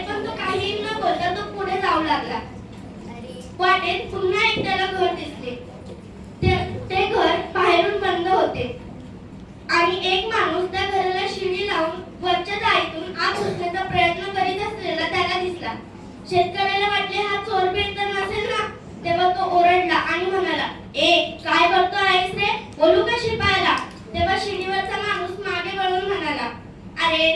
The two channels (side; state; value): both; identical; correlation 1.00